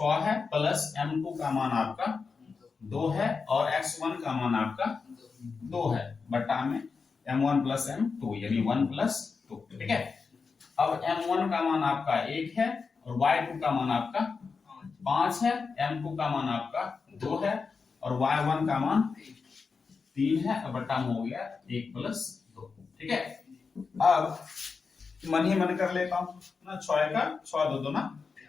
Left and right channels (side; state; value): right; quieter; 5.0 dB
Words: है, प्लस M2 का मान आपका 2 है और X1 का मान आपका 2 है, बटा में M1 प्लस M2 यानी 1 प्लस 2, ठीक है। अब m1 का मान आपका 1 है और y2 का मान आपका 5 है, m2 का मान आपका 2 है और y1 का मान 3 है, और बटा में हो गया 1 + 2। ठीक है, अब मन ही मन कर लेता हूं ना, 6 का 6 2 2 ना